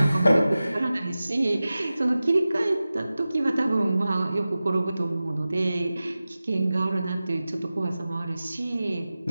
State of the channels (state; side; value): inverted; both; correlation -0.95